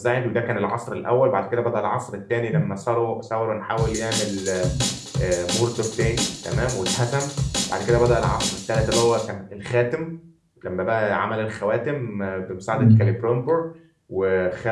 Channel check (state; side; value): identical; both; correlation 1.00